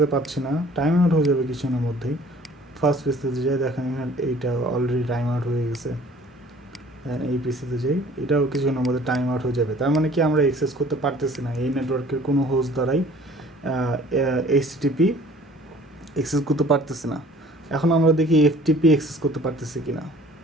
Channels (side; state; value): both; normal; correlation 0.52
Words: পাচ্ছি না, টাইম আউট হয়ে যাবে কিছুক্ষণের মধ্যেই। ফার্স্ট পিসিতে যাই, দেখেন এখানে এইটা অলরেডি টাইম আউট হয়ে গেছে। দেন এই পিসিতে যাই, এটাও কিছুক্ষণের মধ্যে টাইম আউট হয়ে যাবে। তার মানে কি আমরা অ্যাক্সেস করতে পারতেছি না, এই নেটওয়ার্কের কোনো হোস্ট দ্বারাই এইচটিটিপি অ্যাক্সেস করতে পারতেছি না। এখন আমরা দেখি এফটিপি অ্যাক্সেস করতে পারতেছি কিনা।